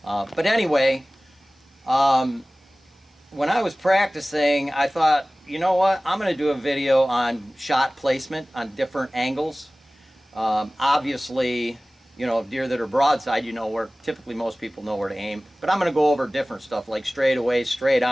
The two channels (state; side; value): normal; both; correlation 0.98